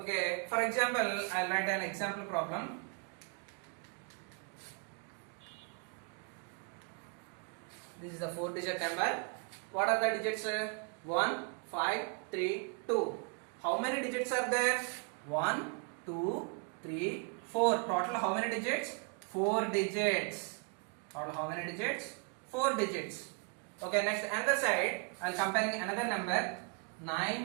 for example, I'll write an example problem. This is the 4-digit number. What are the digits? 1, 5, 3, 2. How many digits are there? 1, 2, 3, 4. Total how many digits? 4 digits. Total how many digits? 4 digits. Okay, next another side, I'll compare another number.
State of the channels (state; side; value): quieter; left; 34.7 dB